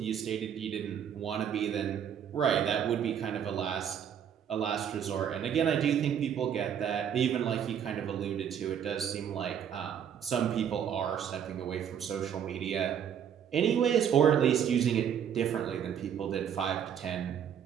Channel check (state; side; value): quieter; left; 8.7 dB